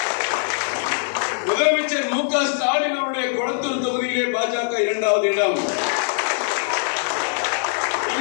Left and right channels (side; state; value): right; silent; digital silence